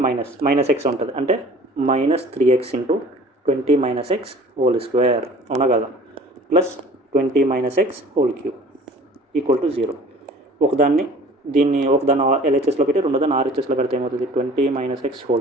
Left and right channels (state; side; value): normal; both; correlation 0.47